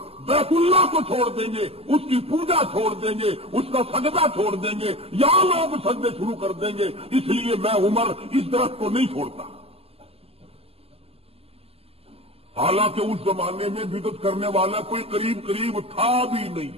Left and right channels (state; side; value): late; left; 0.29 ms